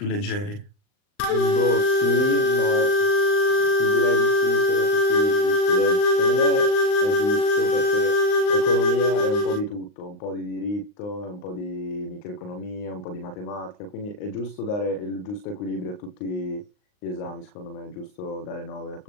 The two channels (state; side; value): late; right; 39 ms